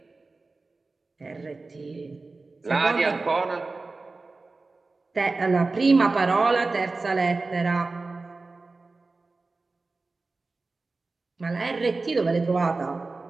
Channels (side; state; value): left; quieter; 3.6 dB